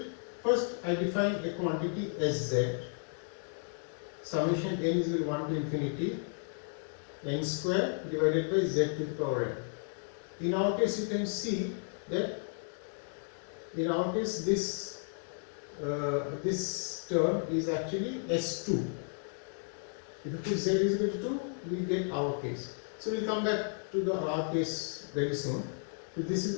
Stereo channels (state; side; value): silent; right; 55 dB below the other